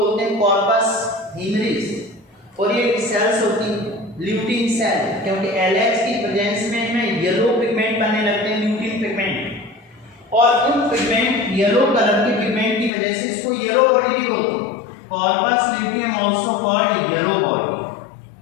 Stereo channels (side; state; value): right; drops out; at 12.9 s